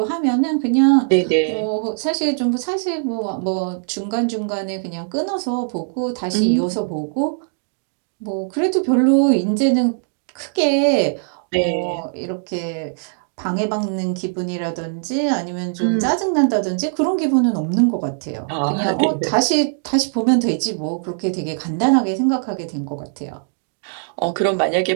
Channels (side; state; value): left; silent; digital silence